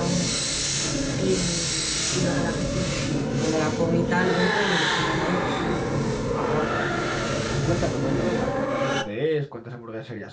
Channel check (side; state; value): both; identical; correlation 1.00